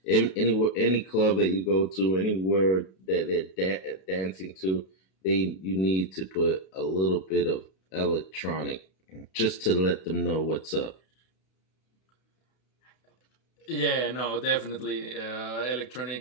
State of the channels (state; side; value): late; right; 32 ms